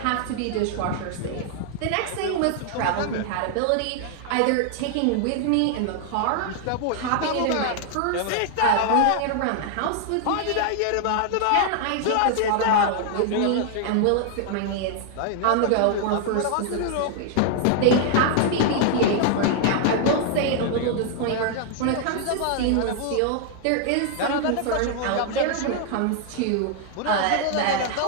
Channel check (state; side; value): different; both; correlation 0.00